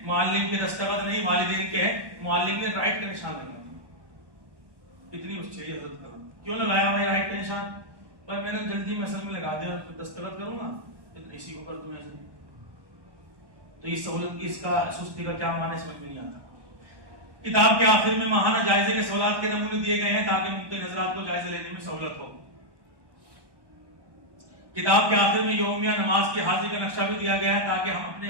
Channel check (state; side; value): late; left; 1.2 ms